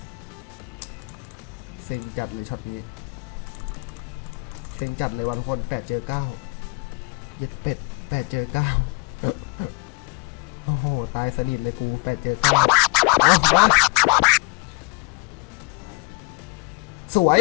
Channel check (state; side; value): quieter; right; 30.6 dB